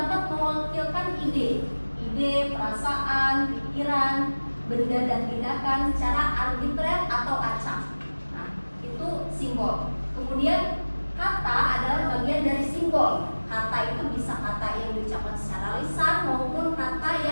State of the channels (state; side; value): inverted; both; correlation -1.00